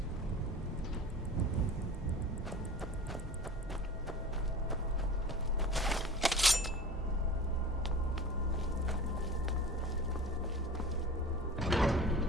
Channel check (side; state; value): both; normal; correlation 0.37